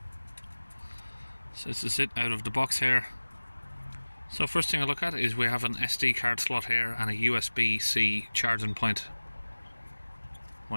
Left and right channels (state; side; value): inverted; both; correlation -1.00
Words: So this is it out of the box here. So first thing I look at is we have an SD card slot here and a USB-C charging point